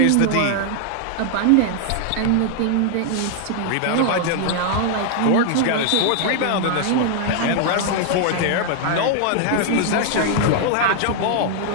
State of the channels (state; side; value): different; both; correlation 0.00